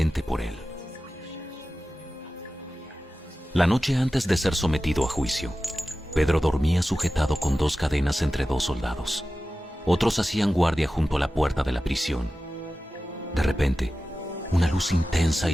por él. La noche antes de ser sometido a juicio, Pedro dormía sujetado con 2 cadenas entre 2 soldados. Otros hacían guardia junto a la puerta de la prisión. De repente, una luz intensa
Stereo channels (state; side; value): normal; both; correlation 0.94